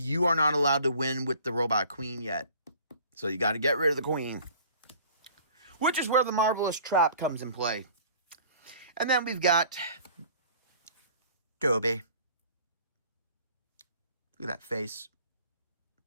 are not allowed to win with the Robot Queen yet. So you got to get rid of the Queen. Which is where the Marvelous Trap comes in play. And then we've got Toby. Look at that face.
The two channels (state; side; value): inverted; both; correlation -0.50